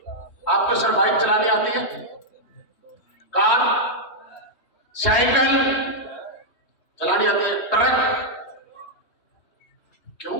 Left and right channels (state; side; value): late; right; 3.1 ms